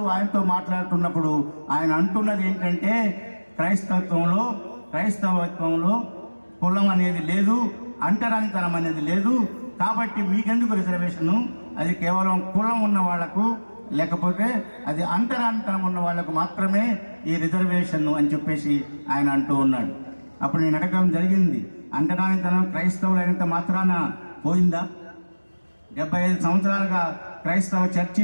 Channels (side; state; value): both; inverted; correlation -1.00